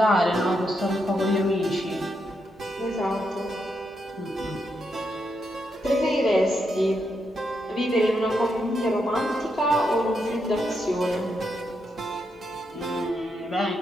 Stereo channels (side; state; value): both; normal; correlation 0.81